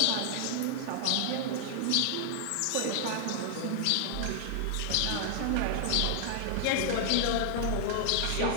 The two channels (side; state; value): both; different; correlation -0.01